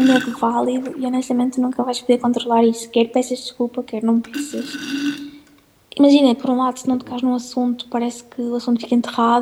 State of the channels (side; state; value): both; identical; correlation 1.00